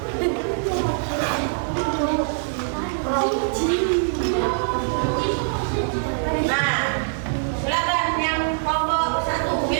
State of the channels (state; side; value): silent; left; 63 dB below the other